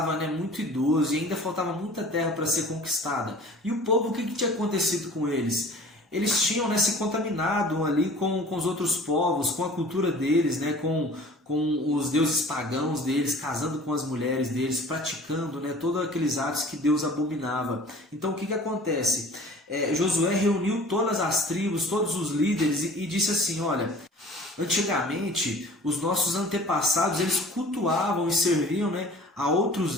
né, muito idoso e ainda faltava muita terra para ser conquistada. E o povo, o que tinha acontecido com eles? Eles tinham, né, se contaminado ali com os outros povos, com a cultura deles, né, com os deuses pagãos deles, casando com as mulheres deles, praticando, né, todos aqueles atos que Deus abominava. Então o que acontece? Josué reuniu todas as tribos, todos os líderes e disse assim: olha, Antigamente, os nossos antepassados, eles cultuavam e serviam, né, a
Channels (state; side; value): normal; both; correlation 0.46